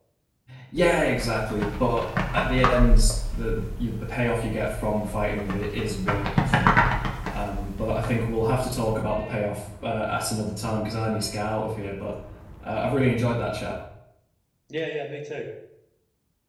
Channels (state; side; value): identical; both; correlation 1.00